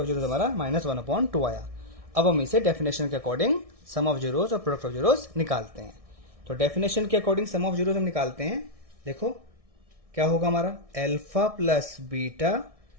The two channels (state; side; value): late; left; 1.6 ms